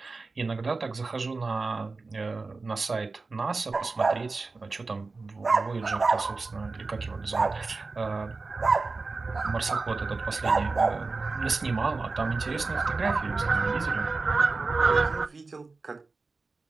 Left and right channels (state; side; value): quieter; left; 3.9 dB